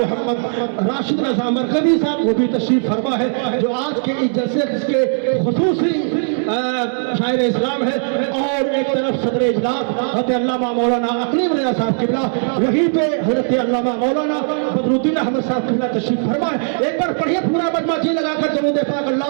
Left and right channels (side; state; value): left; silent; digital silence